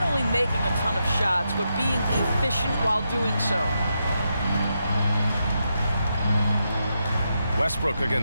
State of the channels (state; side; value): inverted; both; correlation -0.84